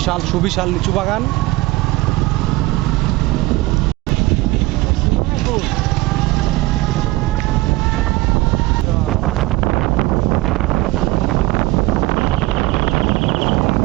সুবিশাল লিচু বাগান।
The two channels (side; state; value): left; quieter; 19.9 dB